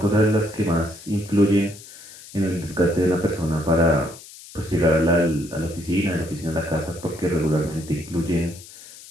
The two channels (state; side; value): noise; left; hiss, 18 dB below the sound